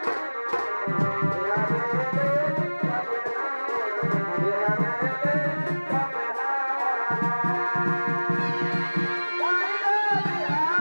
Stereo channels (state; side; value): inverted; both; correlation -1.00